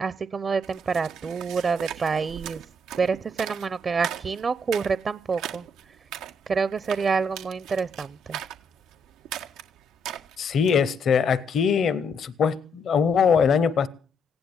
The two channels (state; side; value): normal; both; correlation 0.74